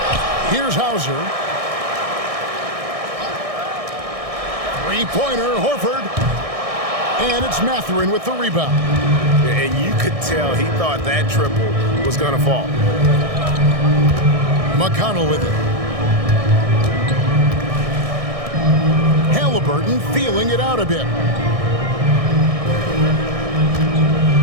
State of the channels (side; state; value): left; late; 1.6 ms